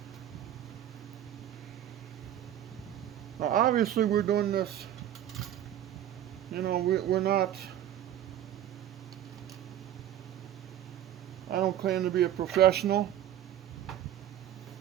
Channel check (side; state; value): left; quieter; 11.5 dB